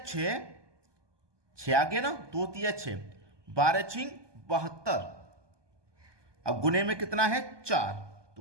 6 आ गया ना, 2 तिया 6, 12 छिंग 72। अब गुने में कितना है, 4,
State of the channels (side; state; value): left; late; 1.2 ms